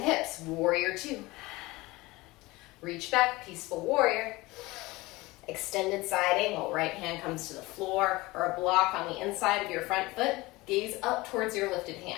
warrior 2. Reach back, peaceful warrior. Extended side angle, right hand comes to the floor or a block on the inside of your front foot. Gaze up towards your lifted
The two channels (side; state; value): right; quieter; 21.1 dB